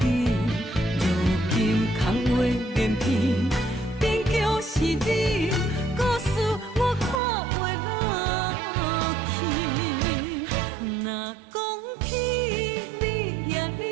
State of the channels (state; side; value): drops out; left; at 7.2 s